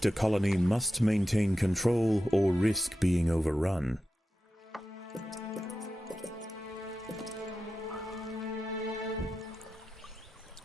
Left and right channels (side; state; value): both; normal; correlation 0.92